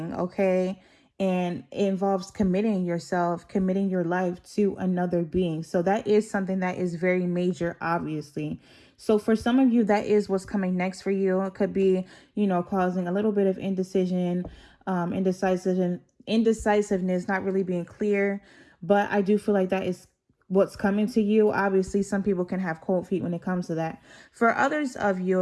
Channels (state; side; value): identical; both; correlation 1.00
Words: okay? And it involves committing yourself, committing your life to another being. So that is something that is very major, obviously. So for some of you, that is what's coming next for you. It could be, you know, causing a little bit of indecision, indecisiveness, not really being clear. But I do feel like that is what's coming to you. Obviously, some people can have cold feet when it comes to that. For others of